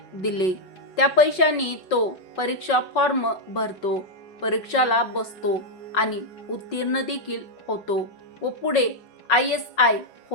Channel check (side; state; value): right; late; 5.4 ms